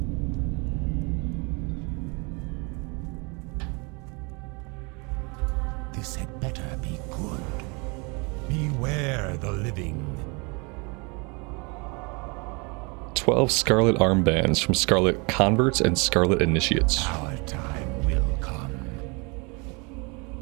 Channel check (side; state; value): left; quieter; 30.4 dB